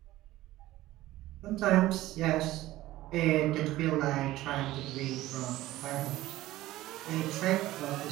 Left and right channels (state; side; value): quieter; left; 16.2 dB